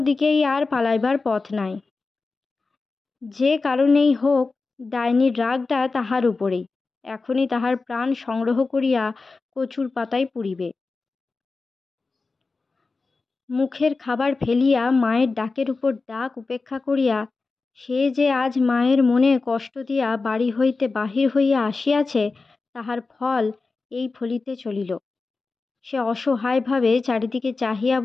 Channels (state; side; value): quieter; right; 4.0 dB